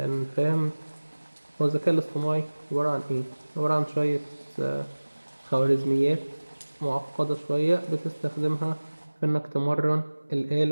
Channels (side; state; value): both; inverted; correlation -1.00